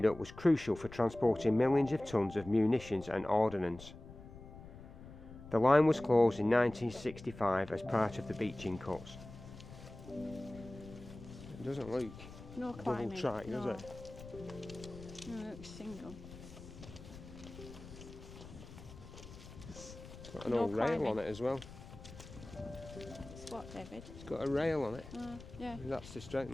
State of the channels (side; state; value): left; noise; rumble, 15 dB below the sound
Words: was crucial for transporting millions of tons of munitions and ordnance. The line was closed in 1965 as part of the beaching cuts. It doesn't look No double climbing. track, no. does it? No, it looks single. It's got an No old rail climbing. on it as well. It's what, David? It's got a rail on it. Yeah. That's to strengthen,